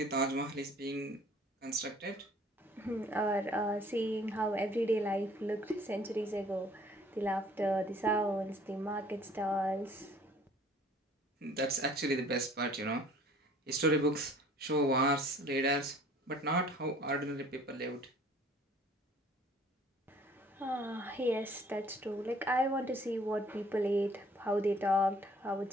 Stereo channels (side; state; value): both; normal; correlation 0.54